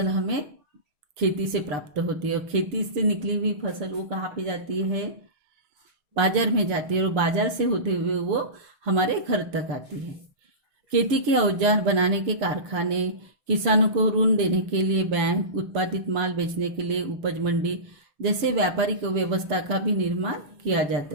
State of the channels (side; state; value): left; late; 6.8 ms